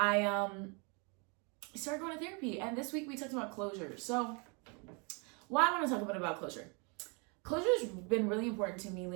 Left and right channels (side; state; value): left; quieter; 33.1 dB